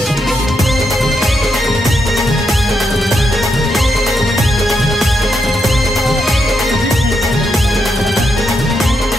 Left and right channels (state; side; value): normal; both; correlation 0.81